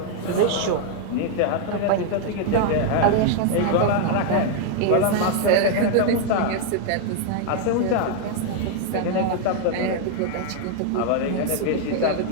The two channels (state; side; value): different; both; correlation 0.00